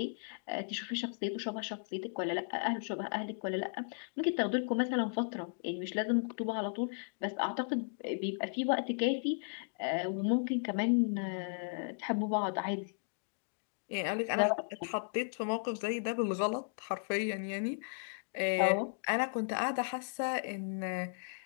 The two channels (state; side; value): silent; right; digital silence